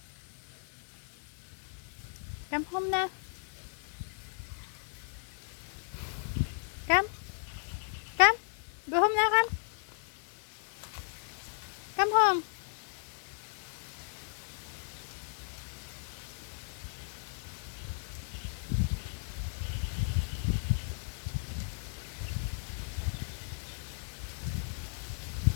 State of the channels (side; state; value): right; silent; 54 dB below the other